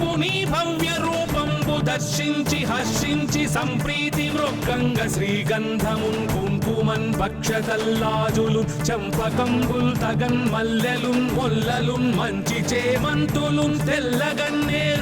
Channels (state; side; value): identical; both; correlation 1.00